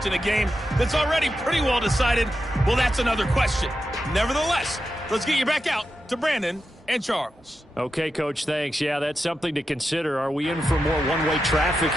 in a game that's already pretty well decided, well, that's another question. Nevertheless, let's get you back out to Brandon and Charles. Okay, Coach, thanks. Yeah, that's something to consider. Are we in for more one-way traffic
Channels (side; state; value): both; normal; correlation 0.89